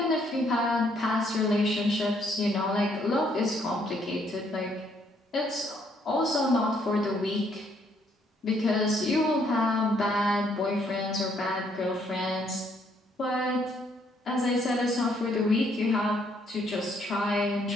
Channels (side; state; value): both; normal; correlation 0.69